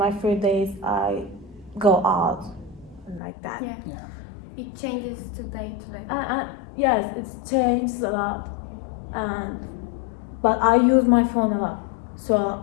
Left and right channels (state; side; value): drops out; right; at 3.2 s